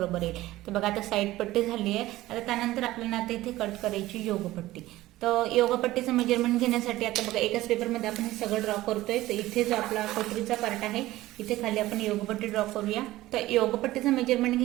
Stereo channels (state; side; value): quieter; left; 16.7 dB